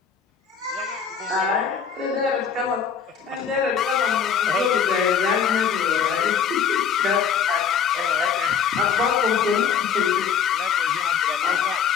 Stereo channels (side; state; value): right; quieter; 7.1 dB